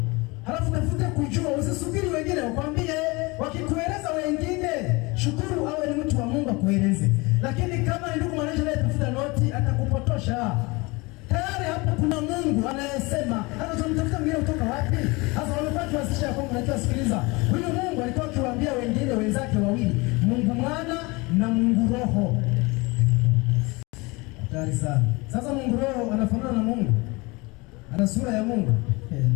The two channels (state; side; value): quieter; right; 25.2 dB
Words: Halafu tafuta kujua, usisubiri wengine wakwambie. Wakikueleza wengine, shukuru awe ni mtu wa Mungu akueleze. Lakini kama ni ndugu mwananchi anayetafuta noti, atakupotosha. Tayari hapo kuna Mungu anayesema. Hata tunamtafuta mwingine kutoka wapi? Sasa wamepata kuwasisha kwamba unajua, sikiliza. Huyu Mungu alikuwa akiwaambia wengine wenzake wawili, Mungu Mwana na Mungu Roho. Hatari sana. Sasa Mungu Roho anafanana na Mungu? Ana sura ya Mungu?